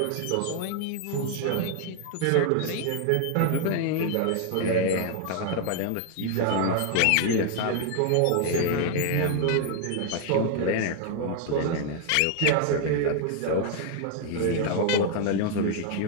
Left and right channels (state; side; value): different; both; correlation 0.00